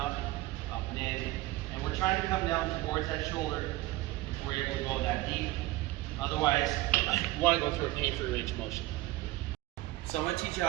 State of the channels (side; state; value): left; quieter; 18.3 dB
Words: up and in. And we're trying to come down towards that shoulder before you're able to go that deep. Otherwise, you want to go through a pain-free range of motion. So I'm going to teach you